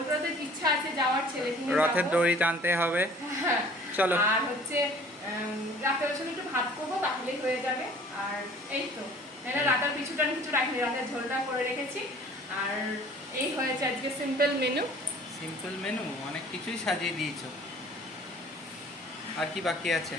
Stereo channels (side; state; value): both; normal; correlation 0.50